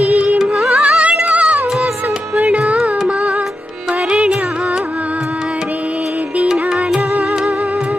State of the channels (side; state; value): both; normal; correlation 0.89